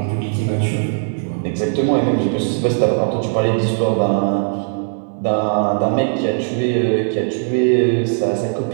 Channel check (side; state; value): left; silent; digital silence